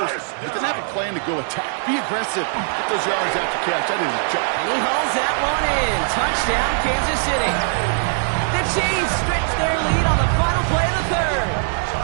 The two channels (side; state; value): left; silent; digital silence